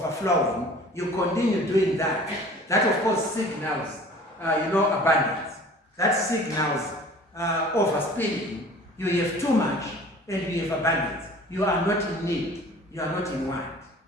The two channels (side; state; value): both; normal; correlation 0.46